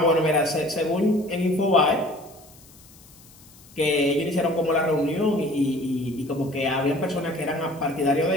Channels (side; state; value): left; noise; hiss, 24 dB below the sound